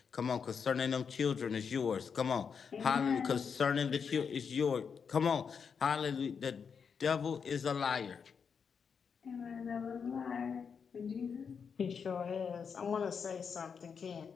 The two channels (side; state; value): right; quieter; 6.3 dB